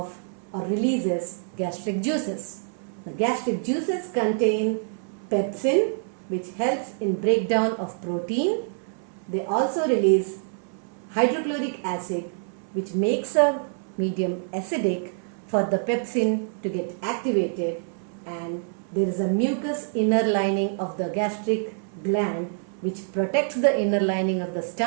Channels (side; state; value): left; silent; 61 dB below the other